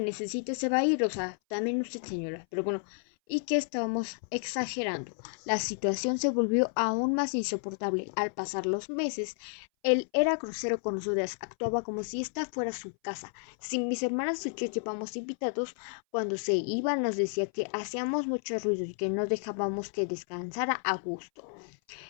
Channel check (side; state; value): right; silent; 57 dB below the other